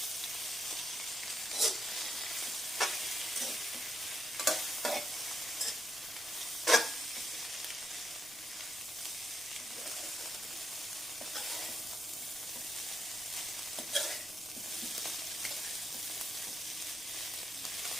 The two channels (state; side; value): noise; right; rumble, 24 dB below the sound